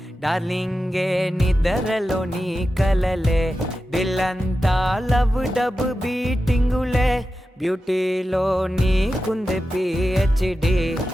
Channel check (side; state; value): both; normal; correlation 0.92